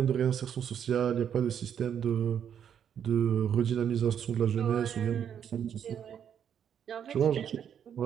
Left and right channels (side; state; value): left; quieter; 8.6 dB